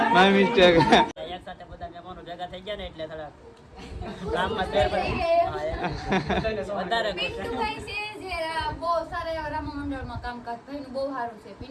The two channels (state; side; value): identical; both; correlation 1.00